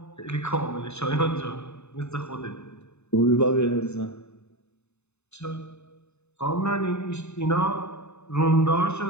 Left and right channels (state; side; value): late; right; 0.81 ms